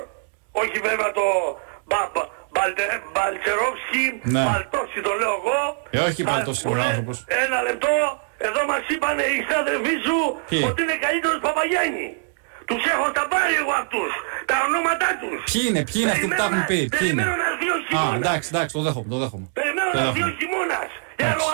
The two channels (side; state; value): left; silent; digital silence